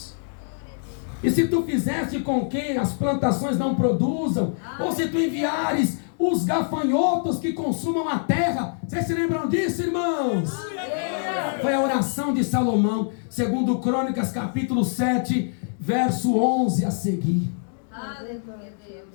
e se tu fizeste com que as plantações não produzam, ou se tu enviares os gafanhotos que consumam a terra. Vocês se lembram disso, irmãos? Foi a oração de Salomão, segundo Crônicas capítulo 7, verso 11 a seguir. Aleluia, Deus.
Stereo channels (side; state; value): right; silent; digital silence